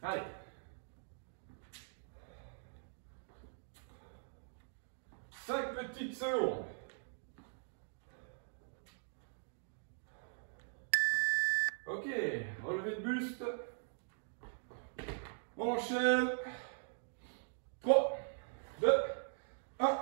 Allez. Cinq petites secondes. Ok, relevé de buste. On enchaîne. 3, 2, 1.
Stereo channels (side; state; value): left; silent; digital silence